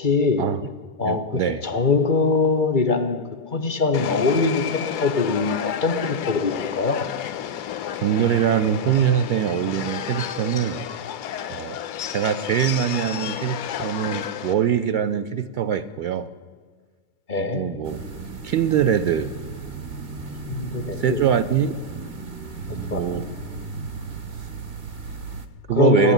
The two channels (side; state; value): right; late; 2.3 ms